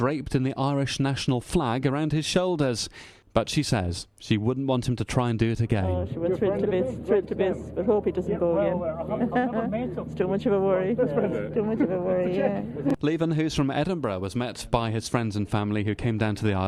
in the Irish national flag around his shoulders. But she says she wouldn't want him to try and do it again. Oh, she was thrilled to bits, but hope he doesn't go again. It's too much of a worry. It's too much of a worry, yeah. Leven, who's from Edinburgh, was met by his friends and family who came down to the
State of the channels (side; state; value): both; identical; correlation 1.00